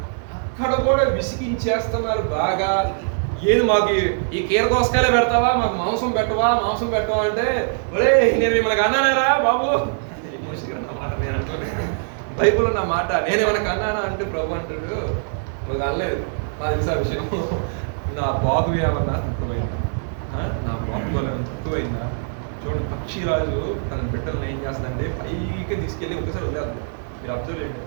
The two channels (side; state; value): left; silent; 60 dB below the other